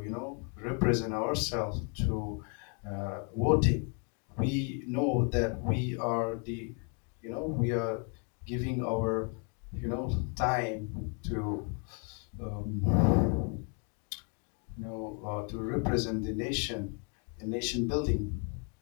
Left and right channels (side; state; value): right; quieter; 39.0 dB